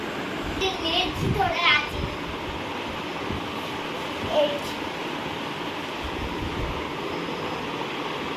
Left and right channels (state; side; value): identical; both; correlation 1.00